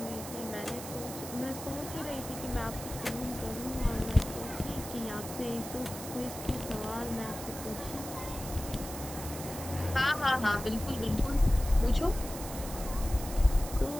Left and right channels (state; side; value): noise; right; hiss, 10 dB below the sound